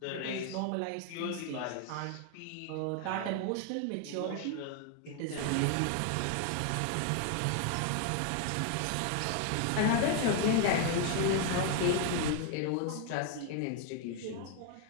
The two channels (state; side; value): different; both; correlation 0.00